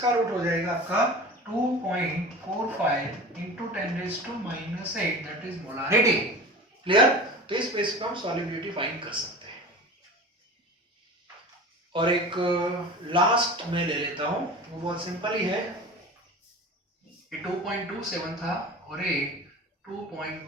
रूट हो जाएगा आपका 2.45 into 10⁻⁸, that is molarity। Clear? तो इस बेस पे हम सॉल्युबिलिटी फाइंड कर सकते हैं। और एक लास्ट में ले लेता हूं, वो बहुत सिंपल ही है, ये 2.27 था और ये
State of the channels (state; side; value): normal; both; correlation 0.35